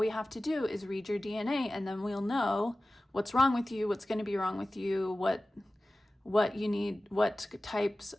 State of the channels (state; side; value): normal; both; correlation 0.97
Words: have to do is read your DNA and then we'll know what's wrong with you, what's going to be wrong with you, what you need, what types